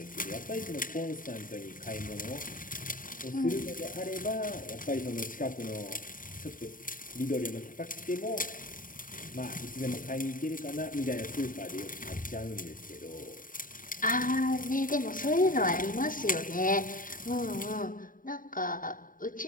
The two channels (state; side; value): late; right; 0.40 ms